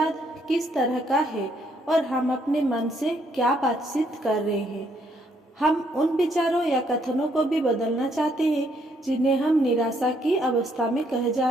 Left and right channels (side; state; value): both; normal; correlation 0.71